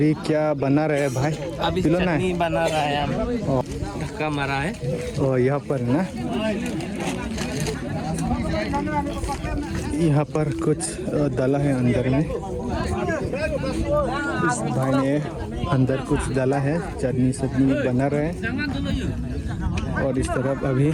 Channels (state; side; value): identical; both; correlation 1.00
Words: क्या बना रहा है भाई? अभी चटनी बना रहा है, ढक्का मारा है। और यहाँ पर ना, यहाँ पर कुछ डाला है अंदर में। इस भाई ने अंदर कुछ डाला है, चटनी सब्जी बना रहे हैं। और इस तरफ अभी